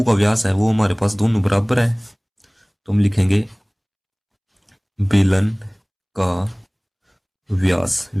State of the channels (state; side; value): identical; both; correlation 1.00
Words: का व्यास है वो हमारे पास दोनों बराबर है। तो हम लिखेंगे बेलन का व्यास,